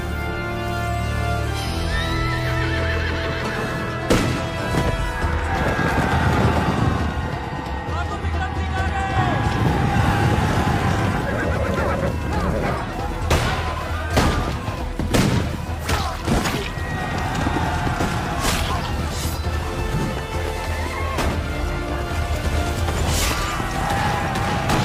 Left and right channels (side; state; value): both; identical; correlation 1.00